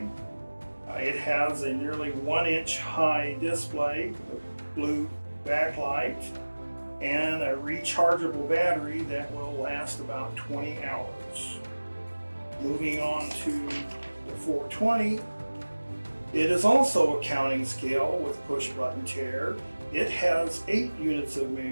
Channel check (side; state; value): both; inverted; correlation -1.00